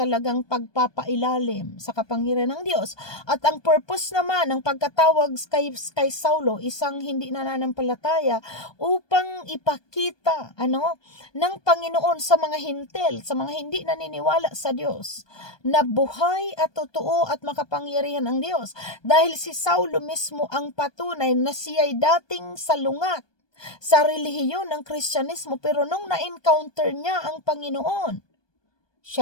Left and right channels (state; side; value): late; right; 1.2 ms